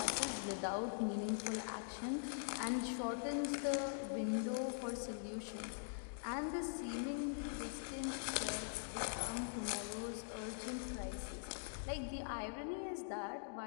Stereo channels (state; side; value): silent; right; digital silence